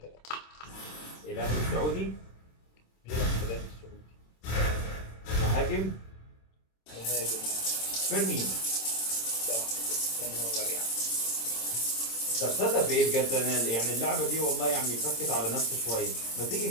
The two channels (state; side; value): late; right; 26 ms